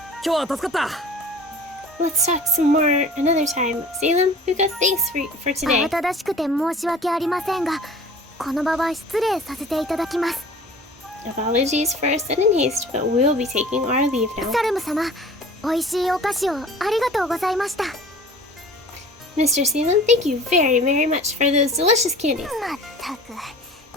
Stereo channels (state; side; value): normal; both; correlation 0.44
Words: 今日は助かった。 Let's talk some more another time. Salem, Puka, thanks for today. 慌ただしくて申し訳ありませんが、この場は失礼させていただきます。 Apologies for our sudden haste, but we'll be taking our leave now. サルム様、美味しいお菓子をありがとうございました。 Mr. Salem, thank you very, very much for those delicious candies. まったく